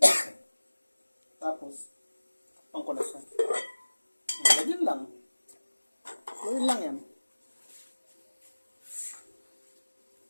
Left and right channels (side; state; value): both; inverted; correlation -1.00